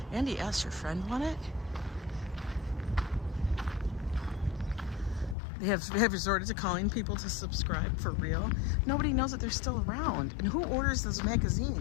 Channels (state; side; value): drops out; right; at 5.4 s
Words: Andy S., your friend won it? They have resorted to calling people to subscribe for real. Nobody knows that they're still around. And who orders those